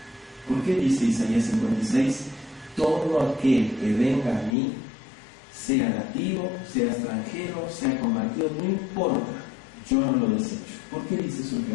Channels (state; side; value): drops out; right; at 4.5 s